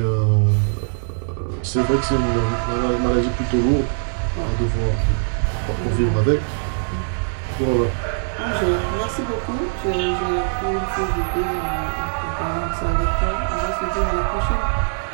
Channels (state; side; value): silent; left; digital silence